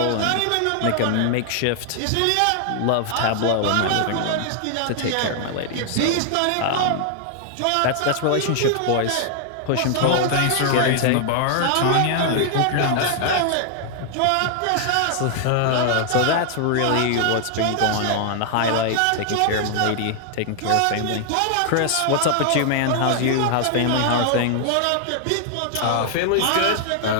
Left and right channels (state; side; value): different; both; correlation 0.00